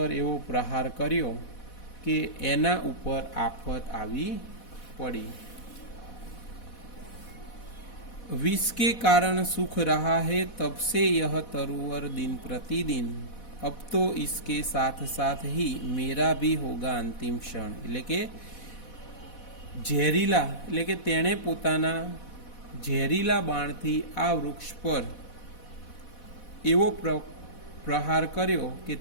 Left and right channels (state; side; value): late; right; 4.1 ms